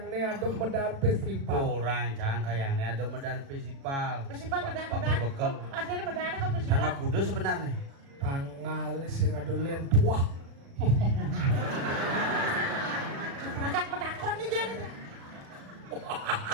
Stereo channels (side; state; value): left; late; 36 ms